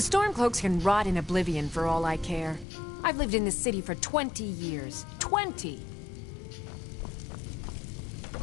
can rot in oblivion for all I care. I've lived in this city for 20 years. 20!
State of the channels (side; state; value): right; drops out; at 2.7 s